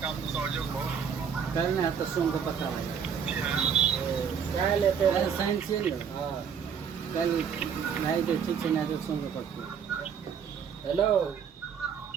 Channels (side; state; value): left; quieter; 7.2 dB